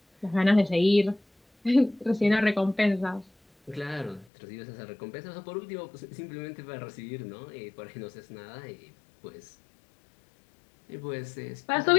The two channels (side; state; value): right; drops out; at 4.2 s